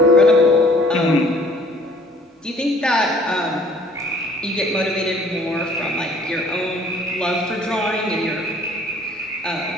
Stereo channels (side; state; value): both; normal; correlation 0.56